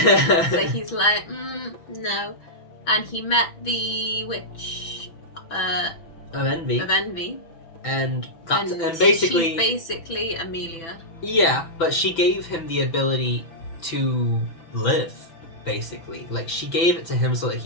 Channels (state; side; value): late; right; 6.0 ms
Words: he's like, no. And he met the witch of Envy. And basically... She's basically Emilia. Yeah, but she gave him the ability to live, basically. Like, she gave it to him so that